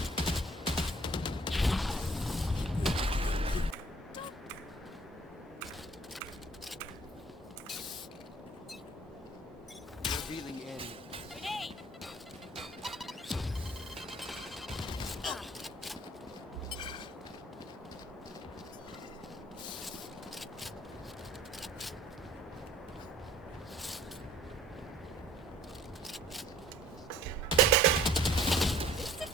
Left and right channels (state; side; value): normal; both; correlation 0.54